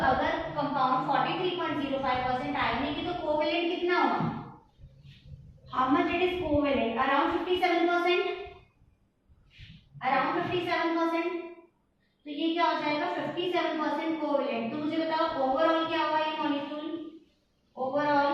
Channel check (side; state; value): both; identical; correlation 1.00